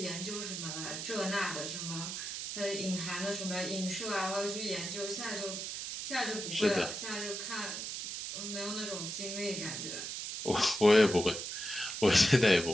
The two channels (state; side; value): noise; right; hiss, 5 dB below the sound